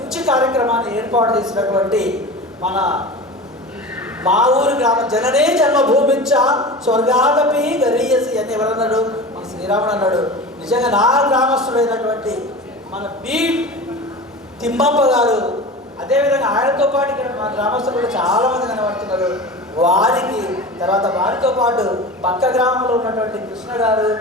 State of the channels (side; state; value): both; normal; correlation 0.32